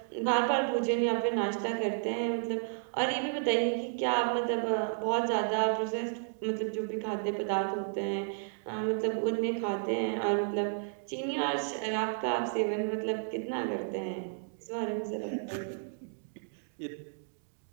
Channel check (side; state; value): left; silent; digital silence